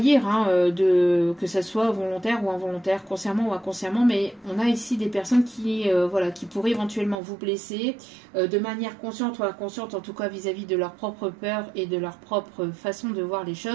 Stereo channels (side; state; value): left; drops out; at 7.2 s